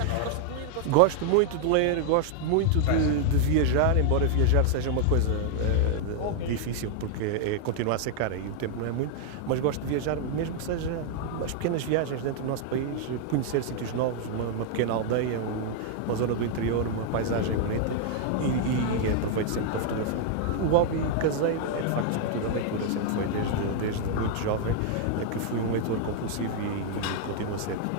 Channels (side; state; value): both; different; correlation 0.00